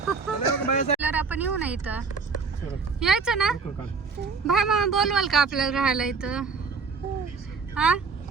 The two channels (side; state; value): left; quieter; 4.9 dB